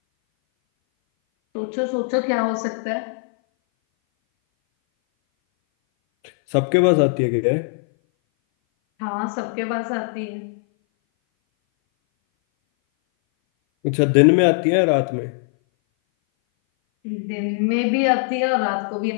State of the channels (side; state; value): right; silent; 59 dB below the other